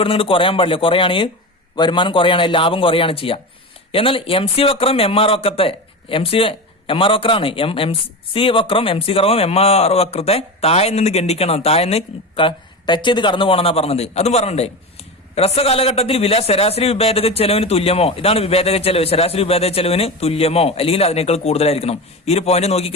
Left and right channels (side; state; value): both; normal; correlation 0.23